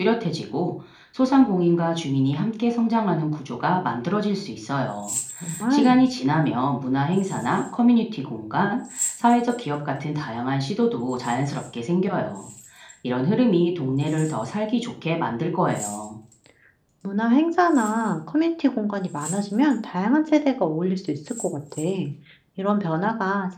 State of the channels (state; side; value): identical; both; correlation 1.00